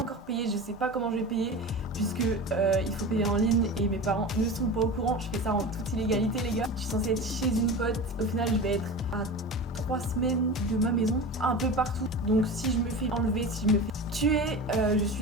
payé, je sais pas comment je vais payer puisque il faut payer en ligne et mes parents ne sont pas au courant. Je fais ça en toute illégalité les gars. Je suis censée être chez une pote, au final je vais être à 3 semaines de ma maison, un peu partout. Donc si je me fais enlever, si je me fais tuer, je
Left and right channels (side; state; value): both; normal; correlation 0.30